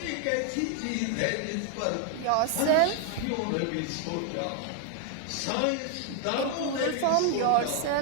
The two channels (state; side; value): different; both; correlation 0.00